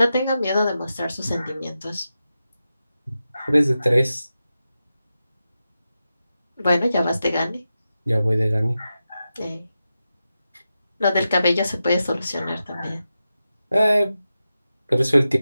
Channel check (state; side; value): inverted; both; correlation -0.91